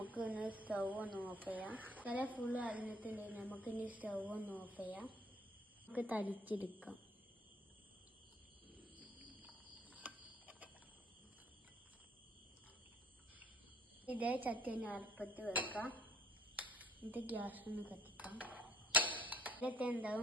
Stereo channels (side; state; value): both; normal; correlation 0.57